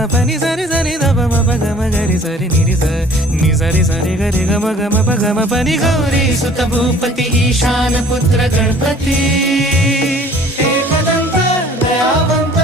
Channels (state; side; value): normal; both; correlation 0.52